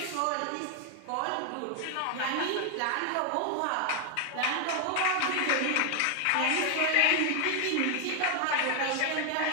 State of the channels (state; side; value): different; both; correlation 0.01